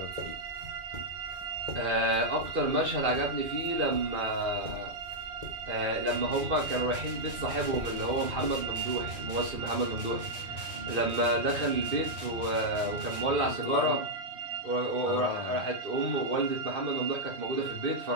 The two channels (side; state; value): left; late; 2.4 ms